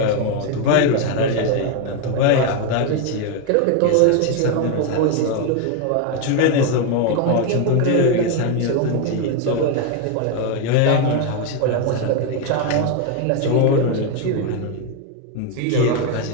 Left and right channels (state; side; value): different; both; correlation 0.01